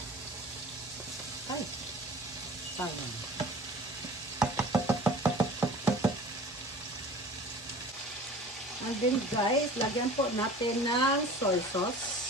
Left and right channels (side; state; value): both; normal; correlation 0.42